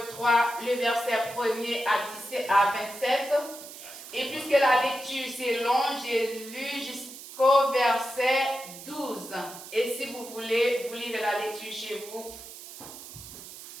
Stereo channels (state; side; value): noise; right; hiss, 14 dB below the sound